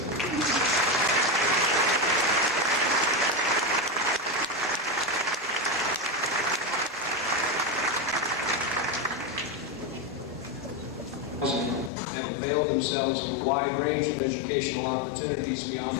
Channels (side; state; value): right; drops out; at 11.9 s